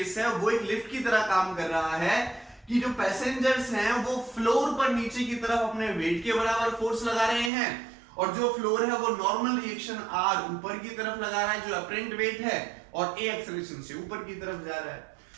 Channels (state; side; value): drops out; left; at 7.5 s